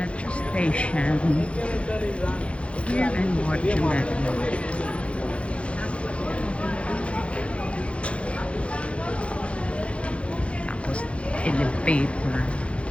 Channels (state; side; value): late; right; 0.061 ms